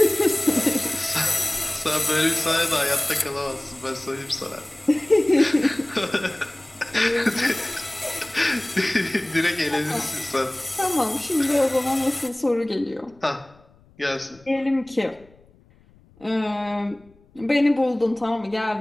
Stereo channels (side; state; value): left; noise; rumble, 29 dB below the sound